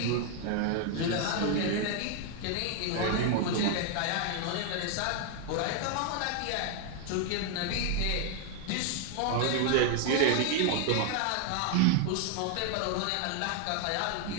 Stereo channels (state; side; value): different; both; correlation 0.00